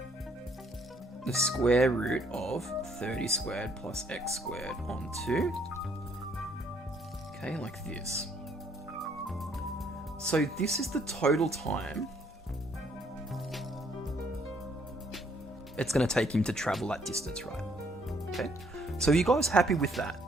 the square root of 30 squared plus x squared on 2. Okay, like this. So this is the total time it's going to take him to travel that distance, right? Okay, so are you guys happy with that?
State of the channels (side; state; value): both; normal; correlation 0.66